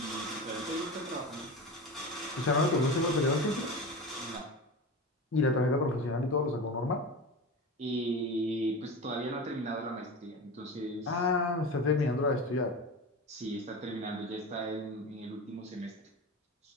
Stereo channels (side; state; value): both; normal; correlation 0.28